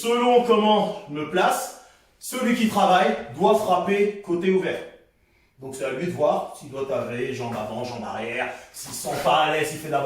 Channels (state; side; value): identical; both; correlation 1.00